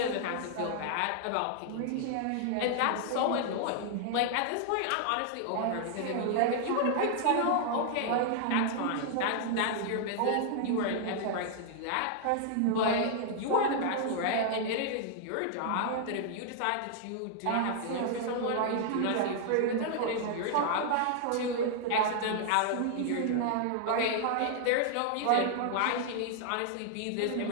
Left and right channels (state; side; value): different; both; correlation -0.01